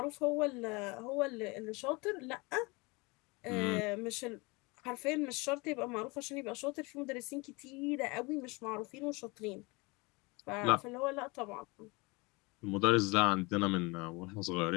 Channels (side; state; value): right; quieter; 26.2 dB